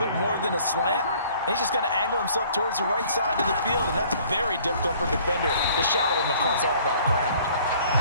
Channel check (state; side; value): inverted; both; correlation -0.56